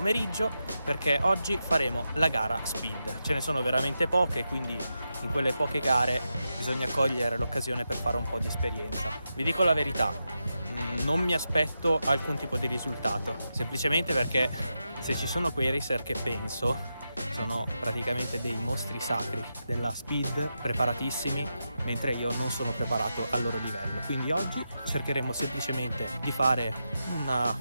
perché oggi faremo la gara speed. Ce ne sono veramente poche, quindi in quelle poche gare bisogna cogliere l'occasione per fare un po' di esperienza. Vi dico la verità, non mi aspetto alcun tipo di risultato, semplicemente perché se ci sono quei racer che penso sono praticamente dei mostri sacri della speed, preparatissimi, mentre io non sono preparato al loro livello. Quindi oggi cercheremo semplicemente di fare una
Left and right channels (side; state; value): both; inverted; correlation -0.88